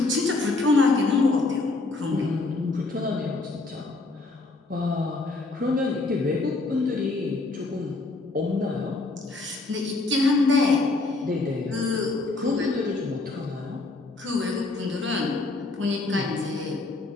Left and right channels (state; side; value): quieter; right; 3.4 dB